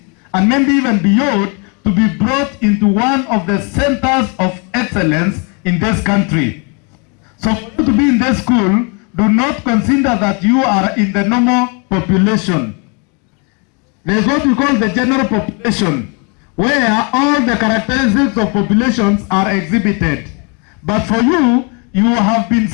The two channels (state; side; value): quieter; right; 34.2 dB